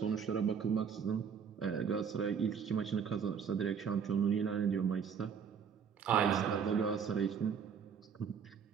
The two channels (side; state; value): left; quieter; 6.9 dB